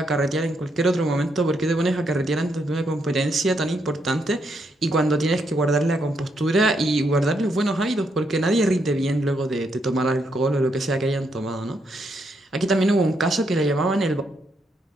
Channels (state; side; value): normal; both; correlation 0.77